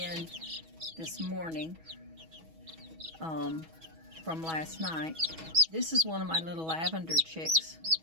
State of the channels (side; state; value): left; late; 6.2 ms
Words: this morning from last night. This is one of my little lavender chicks.